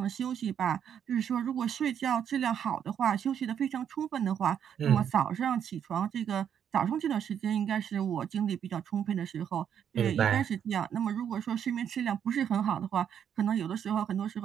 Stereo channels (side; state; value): left; quieter; 8.7 dB